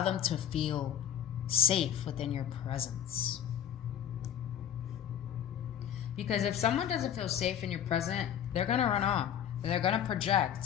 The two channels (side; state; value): right; quieter; 9.7 dB